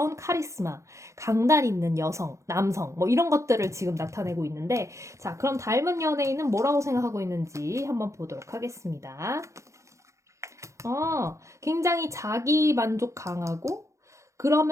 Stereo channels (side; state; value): left; late; 0.15 ms